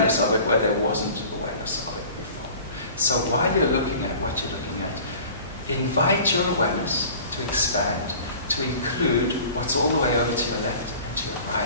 of it where there wasn't awareness of it before. So while you're looking at what you're looking at, invite your awareness to expand, to include what's all the way over to your left and to your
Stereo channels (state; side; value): inverted; both; correlation -0.43